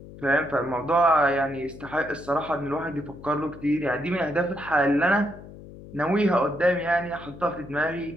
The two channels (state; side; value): noise; left; hum, 16 dB below the sound